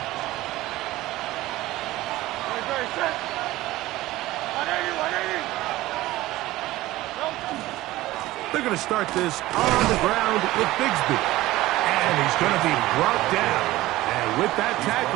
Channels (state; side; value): quieter; left; 17.2 dB